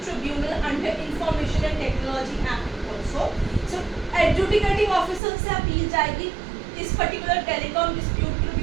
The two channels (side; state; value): left; drops out; at 5.2 s